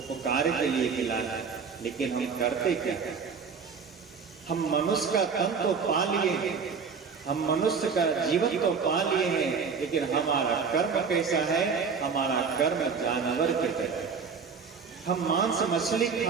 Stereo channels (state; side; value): quieter; left; 5.7 dB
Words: के लिए मिला है। लेकिन हम करते क्या? हम मनुष्य का तन तो पा लिए हैं, हम मनुष्य का जीवन तो पा लिए हैं, लेकिन हमारा कर्म कैसा है? हमारा कर्म जानवर की तरह। हम मांस मछली